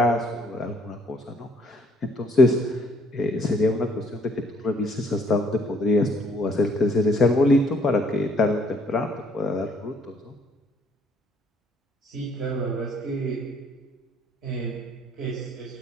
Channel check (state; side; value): normal; both; correlation 0.63